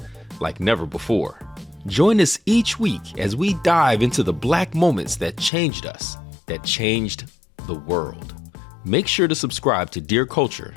like never before. Join us each week as we dive into the Black moments that changed us, that changed the world. Make sure to subscribe to Dear Culture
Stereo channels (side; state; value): right; drops out; at 5.5 s